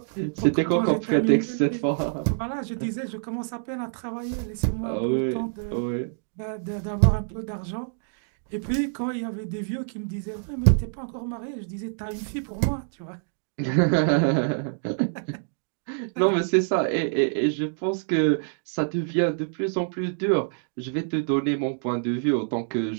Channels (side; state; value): left; silent; digital silence